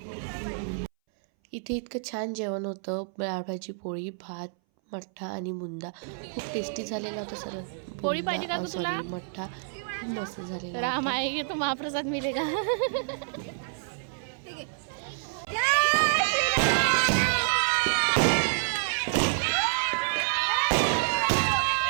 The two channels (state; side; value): silent; left; 59 dB below the other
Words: इथे इतकं छान जेवण होतं. डाळ भाजी, पोळी, भात, मठ्ठा आणि बुंदा. खूप टेस्टी झालेला होता सर. पोळी पाहिजे का तुला? मठ्ठा खूप मस्त झालेला. राम आएंगे तो महाप्रसाद मिलेगा.